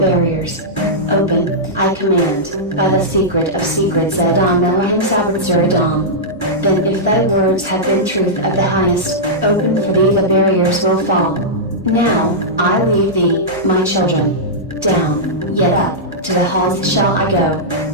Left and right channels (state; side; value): normal; both; correlation -0.11